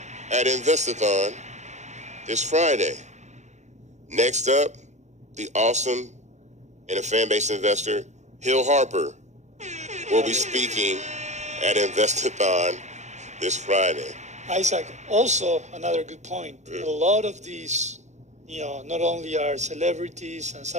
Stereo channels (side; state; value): left; late; 0.34 ms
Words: at Investathon this Friday. Next up, the awesome and a fan-based investor, Hill Harper, will be speaking at Investathon this Friday. Isaac, also another good point. A lot of these, not only are celebrities and